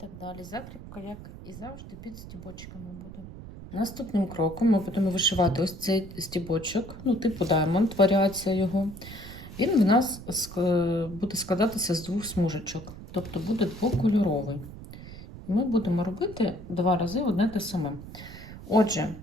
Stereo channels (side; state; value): right; noise; rumble, 14 dB below the sound